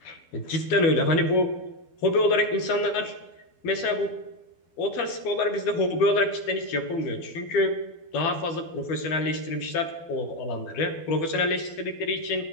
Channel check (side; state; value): right; late; 12 ms